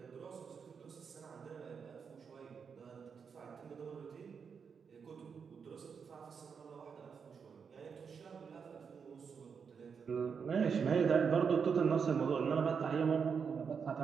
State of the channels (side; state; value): left; quieter; 6.3 dB